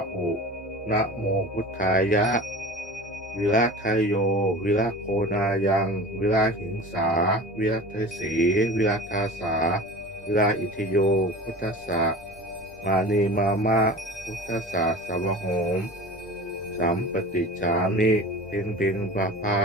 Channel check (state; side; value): normal; both; correlation 0.36